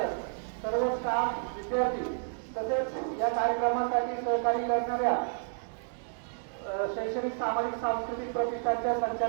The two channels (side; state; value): left; silent; digital silence